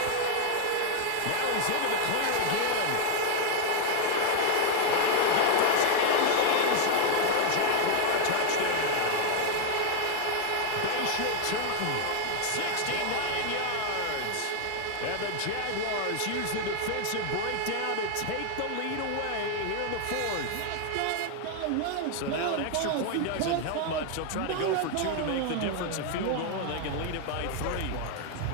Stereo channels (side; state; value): both; different; correlation 0.00